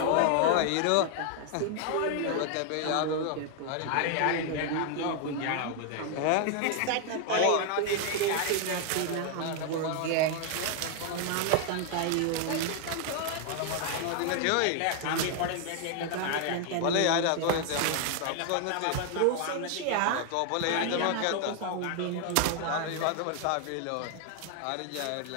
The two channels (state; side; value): different; both; correlation 0.00